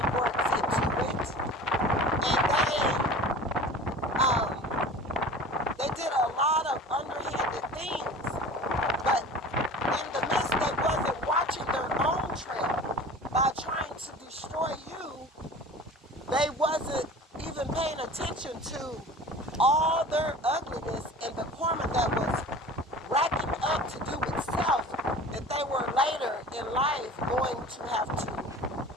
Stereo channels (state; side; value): normal; both; correlation 0.40